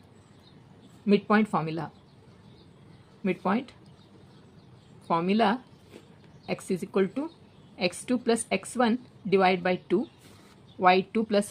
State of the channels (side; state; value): both; identical; correlation 1.00